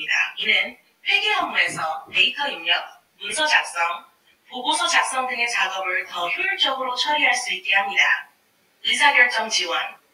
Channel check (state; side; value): identical; both; correlation 1.00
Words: 이는 회계 업무에서 데이터 입력, 문서 작성, 보고서 작성 등의 작업을 더 효율적으로 처리할 수 있게 합니다. 의사결정 지원.